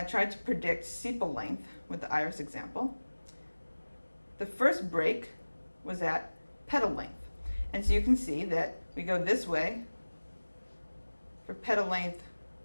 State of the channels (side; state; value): both; inverted; correlation -1.00